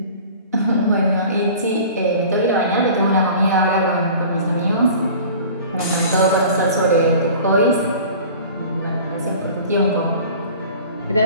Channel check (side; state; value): both; inverted; correlation -0.43